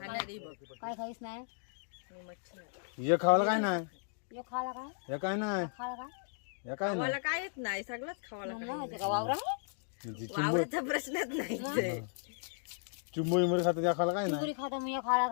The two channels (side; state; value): right; silent; digital silence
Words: बघ. काय खाईस नाही मी मच्छी नाही. हे खावायला काय नाही. यो खाला काय हे काय नाही. खाला काय हे काय नाही. मला काय येत नाही, सगळंच खावायला. मग माहिती का वावरा म्हणजे वावराचा प्रश्नच नाही. चिंबोळी मध्ये खातात या खायला काय नाही. चिंबुरी खाता मग यो खाला